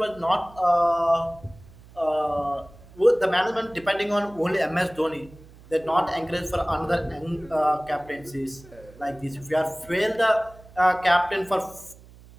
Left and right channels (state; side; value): noise; right; hum, 22 dB below the sound